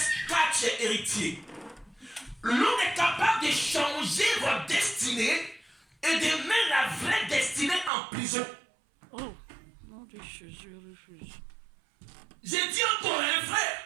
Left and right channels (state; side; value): drops out; left; at 7.9 s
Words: car tu es héritier. L'homme est capable de changer votre destinée et de mettre la vraie destinée en prison. Oh, non, je refuse. J'ai dit encore un frère,